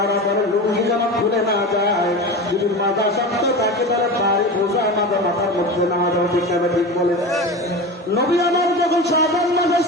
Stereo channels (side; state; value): both; normal; correlation 0.28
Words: বলে লুঙ্গি যেন খুলে না যায়, যদি মাজা শক্ত থাকে তাহলে বাড়ি বোঝা আমাদের মাথার মধ্যে না যাও। ঠিক না? ঠিক বলে। নবী আমার যখন শাবান মাস